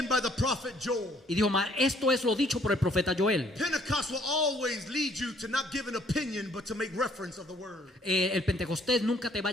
by the prophet Joel. Y dijo, esto es lo dicho por el profeta Joel. Pentecost will always lead you to not give an opinion, but to make reference of the word. El Pentecostés nunca te va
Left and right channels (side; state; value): both; normal; correlation 0.63